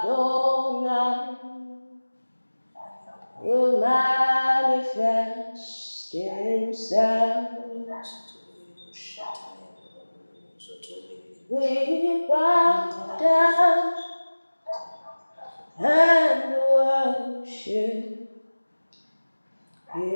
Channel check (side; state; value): both; inverted; correlation -1.00